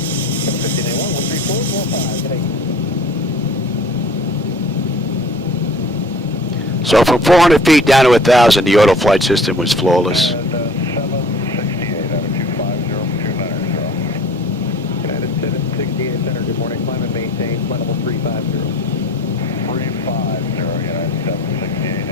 13445. So from 400 feet down to 1,000, the auto flight system was flawless. 768 out of 250, United 768 center, good morning, climb and maintain, flight level 350. 350, United 768,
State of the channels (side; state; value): both; normal; correlation 0.46